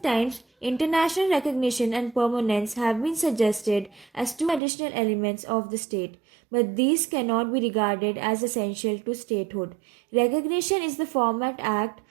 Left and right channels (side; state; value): left; drops out; at 4.6 s